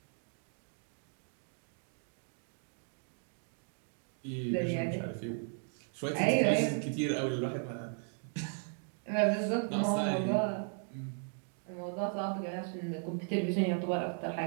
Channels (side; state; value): left; silent; 54 dB below the other